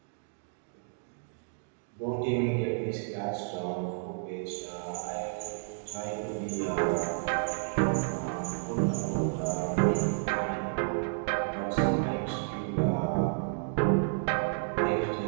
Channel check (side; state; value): left; silent; digital silence